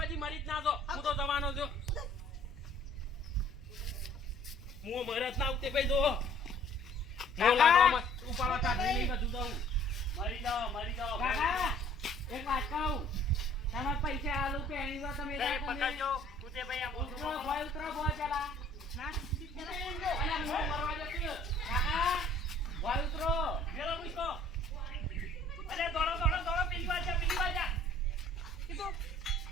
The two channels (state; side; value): noise; left; rumble, 24 dB below the sound